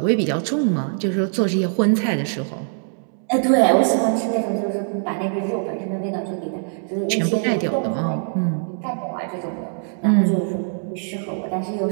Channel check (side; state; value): left; silent; digital silence